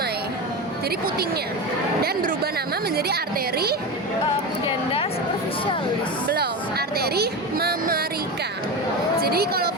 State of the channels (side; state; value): both; normal; correlation 0.22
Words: Jadi putingnya dan berubah nama menjadi arteri Pudenda superficialis. belum, arteri mamarika. Jadi kalau